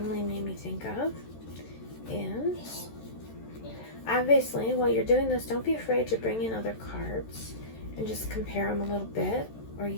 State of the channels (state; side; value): late; right; 13 ms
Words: made me think of is, obviously, while you're doing this, don't be afraid to bring in other cards and just compare them a little bit, or